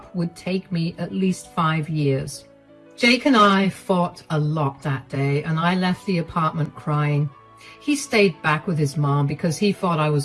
would take me at least 5 years. Jake and I fought a lot that day, and I left the apartment crying. He stayed back with his mom because he thought I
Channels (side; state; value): both; identical; correlation 1.00